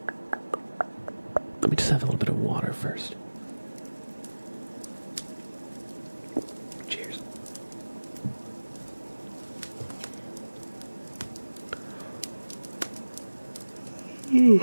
Let me just have a little bit of water first. Cheers.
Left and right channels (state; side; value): inverted; both; correlation -1.00